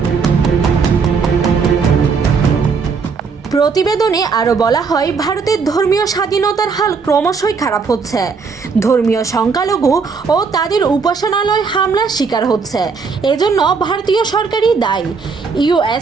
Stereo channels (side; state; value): left; quieter; 5.2 dB